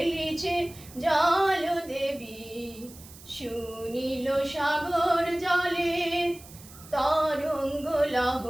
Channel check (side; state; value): right; noise; hiss, 19 dB below the sound